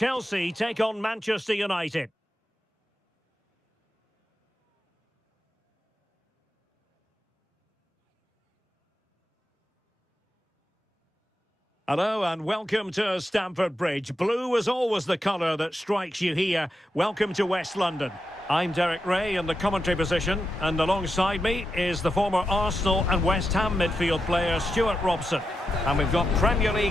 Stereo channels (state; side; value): normal; both; correlation 0.87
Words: take on Manchester United. Hello and welcome to Stamford Bridge. Blue is always the colour that strikes you here. Welcome to West London. I'm Derek Ray in the commentary position, and alongside me is the former Arsenal and West Ham midfield player Stuart Robson. And we've got Premier